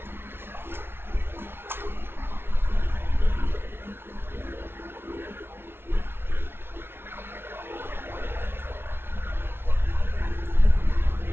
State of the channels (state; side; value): late; left; 0.11 ms